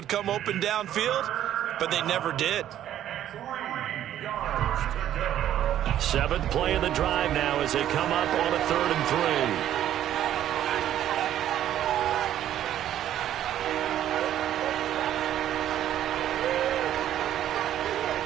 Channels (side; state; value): left; quieter; 11.6 dB